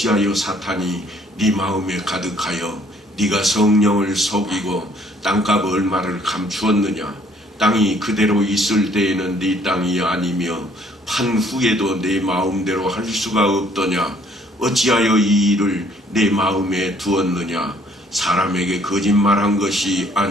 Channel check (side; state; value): both; normal; correlation 0.61